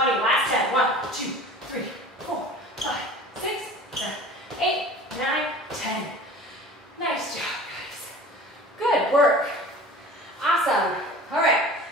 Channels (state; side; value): normal; both; correlation 0.41